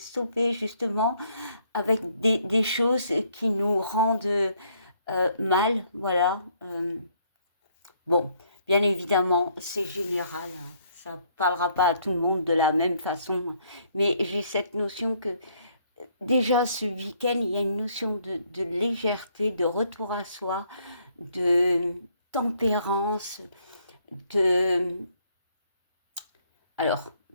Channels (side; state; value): both; inverted; correlation -0.67